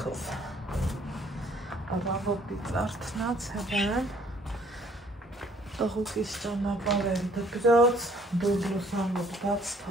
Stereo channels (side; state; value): both; normal; correlation 0.60